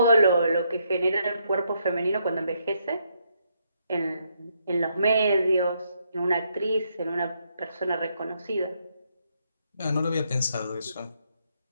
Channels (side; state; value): both; inverted; correlation -0.75